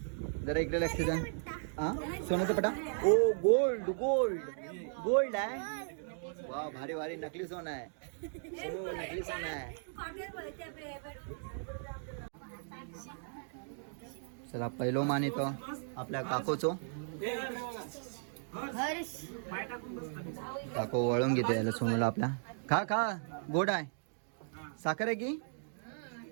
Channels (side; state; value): left; silent; digital silence